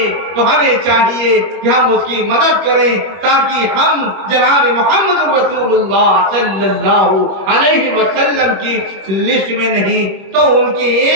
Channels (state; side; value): late; left; 21 ms